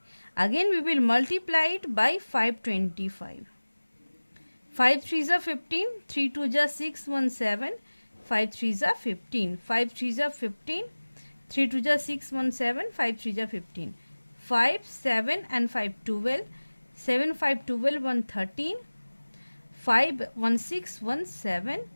Again we will multiply it by 525. 5 3 is 15, 3 2 is 6 1 7, 5 3 is 15, 5 3 is 15, 3 2 is 6 1 7, 5 3 is 15, 5 7 and 5 12, 7 5 12 1 13, 5 1 6 1 7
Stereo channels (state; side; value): inverted; both; correlation -1.00